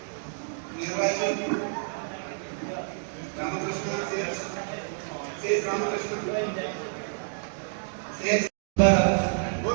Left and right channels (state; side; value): silent; left; digital silence